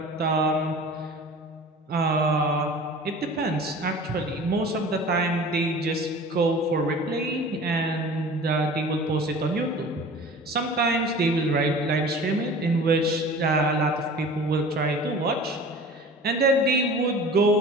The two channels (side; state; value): both; normal; correlation 0.41